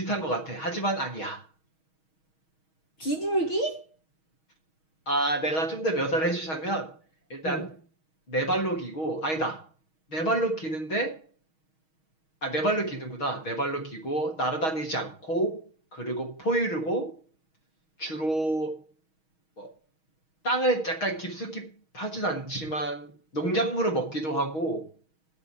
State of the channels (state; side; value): late; right; 6.3 ms